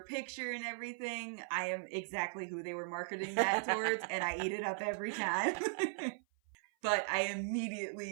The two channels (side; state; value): left; silent; 52 dB below the other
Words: picture and everything. I am exactly who they were marketing that towards, and I eat it up every time. But I